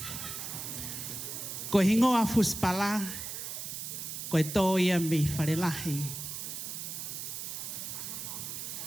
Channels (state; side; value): noise; right; hiss, 6 dB below the sound